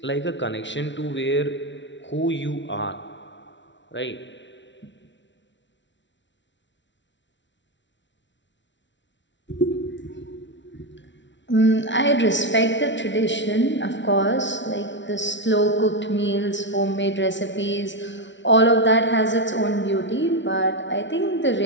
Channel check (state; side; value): late; right; 0.54 ms